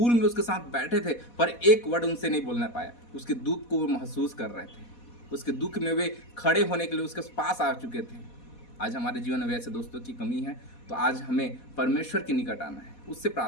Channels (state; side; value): late; right; 4.1 ms